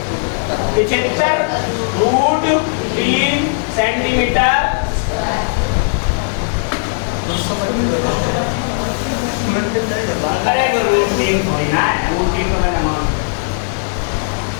75√3 सेंटीमीटर। अरे वो √3 थोड़ी ना है, √3 तो मैंने मान।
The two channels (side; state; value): right; silent; 61 dB below the other